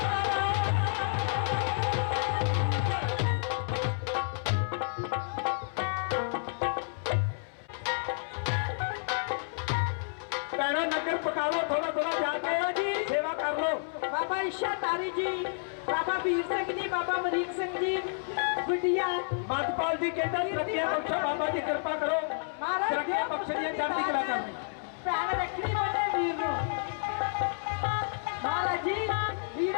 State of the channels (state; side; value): silent; right; 58 dB below the other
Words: ਪੈਣਾ ਨਗਰ ਪਕਾ ਲਓ ਥੋੜਾ ਥੋੜਾ ਜਾ ਕੇ ਜੀ ਸੇਵਾ ਕਰ ਲਓ ਬਾਬਾ ਇੱਛਾਧਾਰੀ ਜੀ, ਬਾਬਾ ਵੀਰ ਸਿੰਘ ਜੀ, ਬਾਬਾ ਅਮਰੀਕ ਸਿੰਘ ਜੀ, ਗੁੱਡੀਆ ਮਤਪਾਲ ਜੀ ਕਹਿੰਦਾ ਤਰੱਕੀਆਂ ਬਖਸ਼ੋ ਬਾਬਾ ਜੀ ਕਿਰਪਾ ਕਰੋ ਮਹਾਰਾਜ ਤਰੱਕੀਆਂ ਬਖਸ਼ਣੀਆਂ ਚੜ੍ਹਦੀ ਕਲਾ ਕਰਨੀ ਭੈਣ ਰੱਖਣੀ ਬਣੇ ਵੀਰ ਨੂੰ। ਮਹਾਰਾਜ ਜੀ